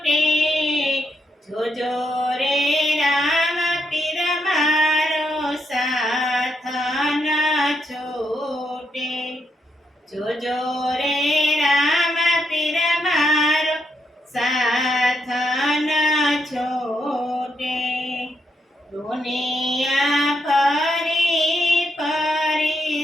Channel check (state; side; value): normal; both; correlation 0.80